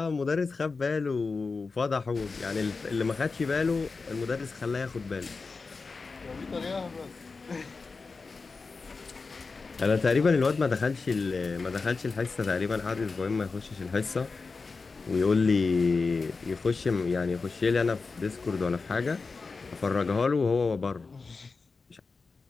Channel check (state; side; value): quieter; right; 4.3 dB